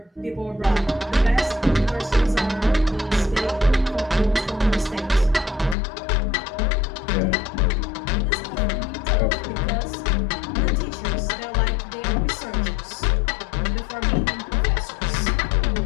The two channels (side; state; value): right; drops out; at 5.8 s